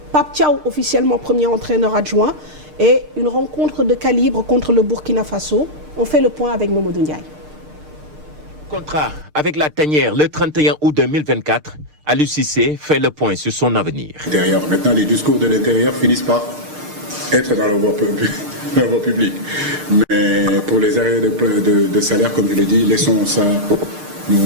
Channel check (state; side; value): late; left; 6.6 ms